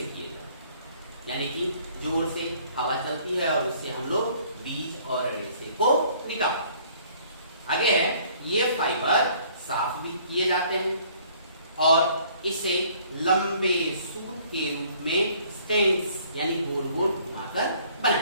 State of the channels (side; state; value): both; inverted; correlation -0.58